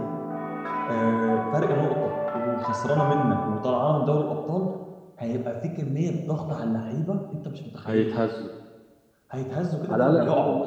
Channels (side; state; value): both; identical; correlation 1.00